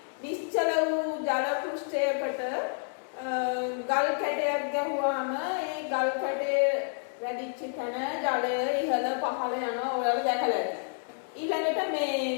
නිශ්චල වූ ජල පෘෂ්ඨයකට ගල් කැටයක් ගැහුවාම ඒ ගල් කැටේ වැඩිච්ච තැන ජලය ඉහළ පහළ යනවා ඔයාලා දැකලා ඇති. ඊළඟට මේ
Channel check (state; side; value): silent; right; 58 dB below the other